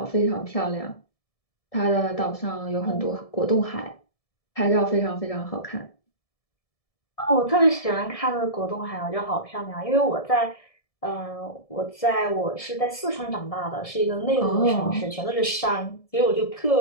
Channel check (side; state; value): right; late; 1.7 ms